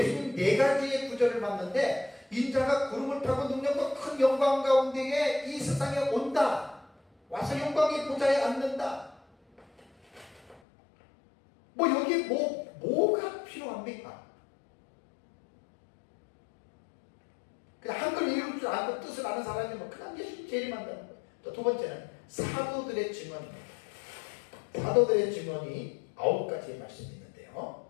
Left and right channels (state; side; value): drops out; right; at 10.6 s